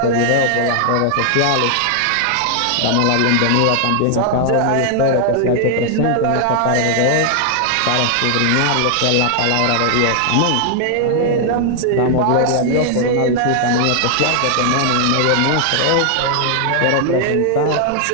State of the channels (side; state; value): both; different; correlation 0.00